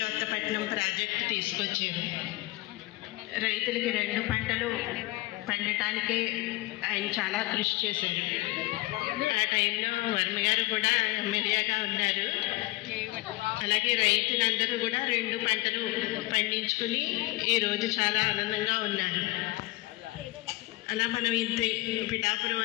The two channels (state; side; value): quieter; right; 20.1 dB